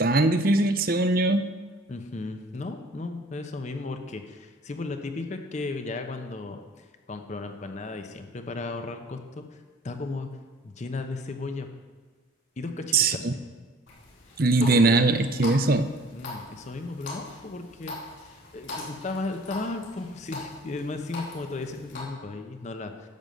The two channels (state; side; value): normal; both; correlation 0.52